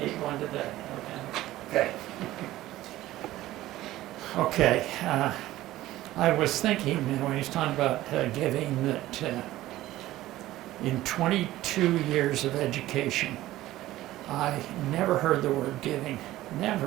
need one today. Okay. Okay, I was thinking, when he's talking about giving, that in 22 years of education, I never heard the word giving,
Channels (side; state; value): left; quieter; 15.7 dB